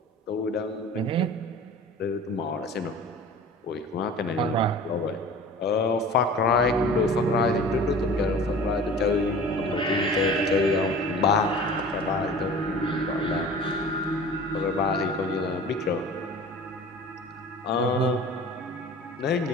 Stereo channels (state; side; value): normal; both; correlation 0.41